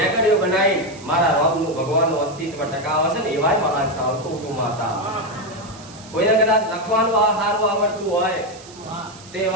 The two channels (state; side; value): noise; right; hiss, 20 dB below the sound